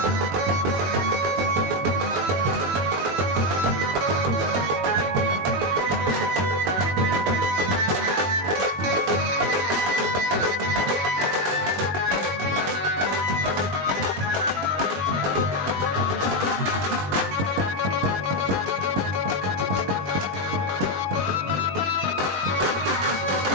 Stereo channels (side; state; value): left; late; 21 ms